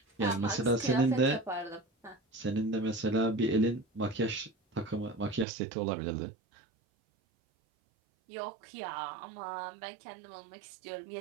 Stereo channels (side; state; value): left; drops out; at 5.5 s